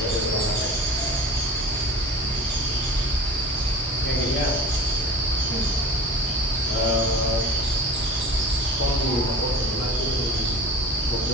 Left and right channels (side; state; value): both; normal; correlation 0.38